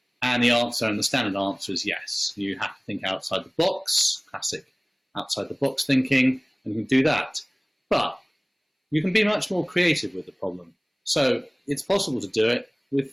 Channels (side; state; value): both; identical; correlation 1.00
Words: And the answer, and the standard answer, is yes. You have to think outside the box, classic outside the box thinking, and you can do that. But you can be much more creative with the problem. So it's possible to do it